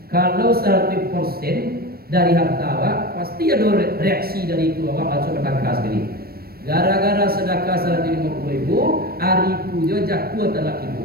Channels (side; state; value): left; late; 0.44 ms